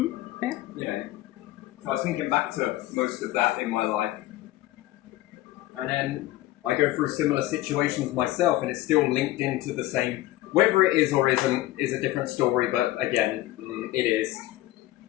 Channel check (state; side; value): quieter; right; 16.4 dB